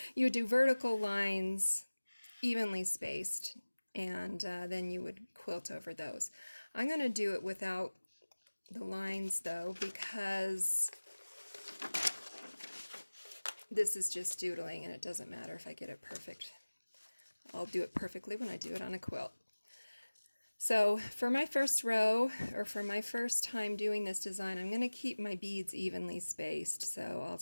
You would do vertical lines evenly spaced, and then you would quilt over those. I'm going to do it without the lines though, because this is just doodling and it doesn't matter if I get it perfect. I'll do it perfectly when I do it on a quilt. So for my first row, or for my first time doing this design, I'm going to keep my beads evenly spaced. So I'll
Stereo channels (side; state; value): both; inverted; correlation -1.00